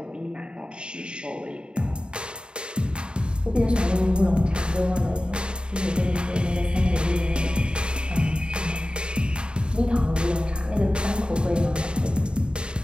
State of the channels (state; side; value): late; left; 0.051 ms